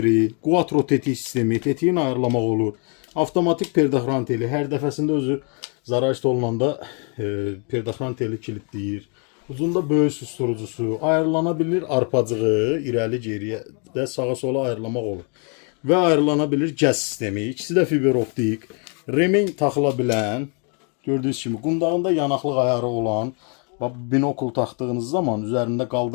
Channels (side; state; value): right; quieter; 37.9 dB